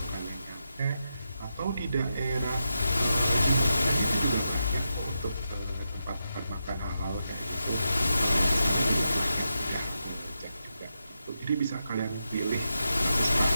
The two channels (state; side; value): inverted; both; correlation -0.87